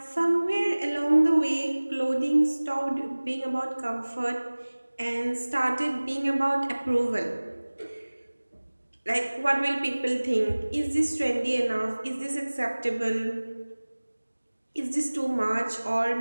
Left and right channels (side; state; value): both; inverted; correlation -1.00